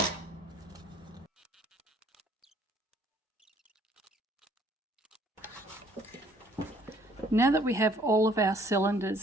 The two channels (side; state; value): both; normal; correlation 0.60